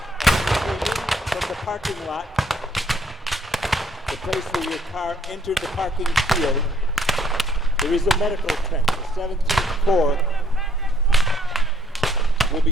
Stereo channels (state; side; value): normal; both; correlation 0.65